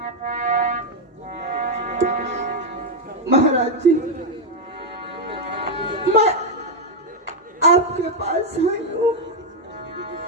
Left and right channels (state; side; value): normal; both; correlation 0.02